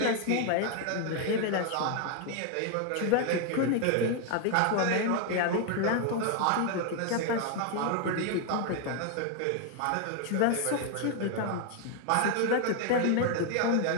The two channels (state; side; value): different; both; correlation 0.01